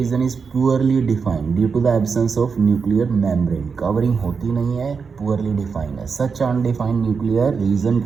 is poorly defined due to the absence of nuclear membrane. Covering होती नहीं है, पुअरली डिफाइंड है. Such undefined nuclear region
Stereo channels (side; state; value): left; quieter; 5.5 dB